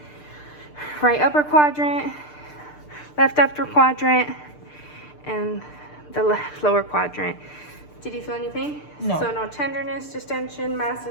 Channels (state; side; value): late; right; 6.7 ms